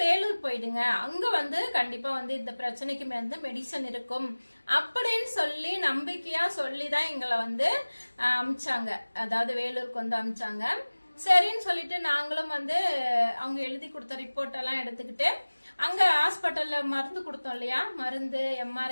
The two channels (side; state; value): both; inverted; correlation -1.00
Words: வேலூர் போயிடுங்க, அங்க வந்து கண்டிப்பா வந்து இந்த பிரச்சனைக்கு வந்து மெடிசன் இருக்கும் அப்படின்னு சொல்லி நம்பிக்கையா சொல்லிதான் எங்களை வந்து அமிச்சாங்க. அதாவது வேலூருக்கு வந்து அமிச்சாங்க. சரின்னு சொல்லிட்டு நாங்களும் வந்து அவங்க எழுதி கொடுத்த ரிப்போர்ட் எல்லாம் எடுத்துக்கிட்டு அங்க ஹாஸ்பிட்டல்ல மருந்து கொடுத்தோம் இல்லையா, மருந்து